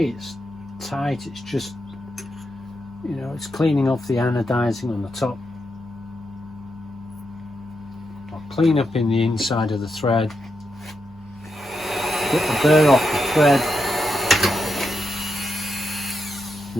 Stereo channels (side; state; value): both; normal; correlation 0.84